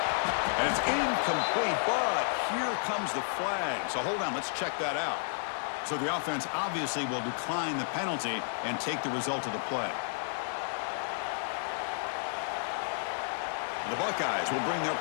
And it's incomplete, but here comes the flag. So hold on, let's check that out. So the offense obviously will decline the penalty and take the result of the play. The Buckeyes will bring their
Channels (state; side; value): silent; right; digital silence